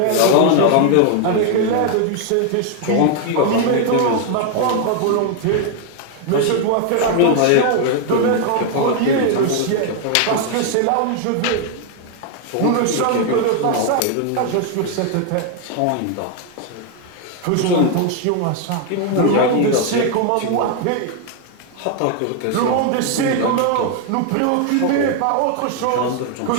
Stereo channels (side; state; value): both; different; correlation 0.00